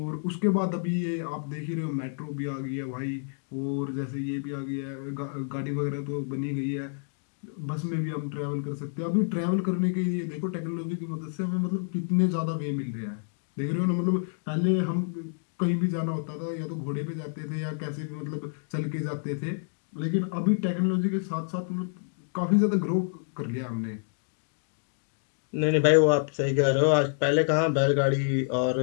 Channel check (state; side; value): silent; right; digital silence